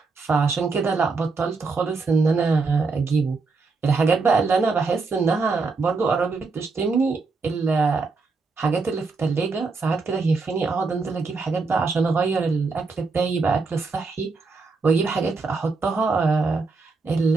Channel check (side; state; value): left; quieter; 4.2 dB